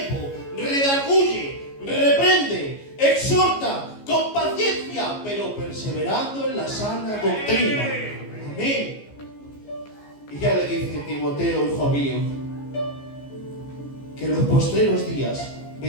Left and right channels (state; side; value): late; right; 14 ms